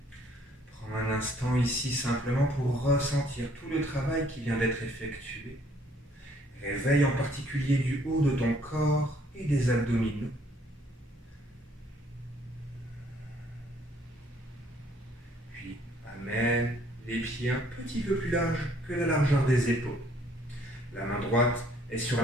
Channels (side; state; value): both; normal; correlation 0.63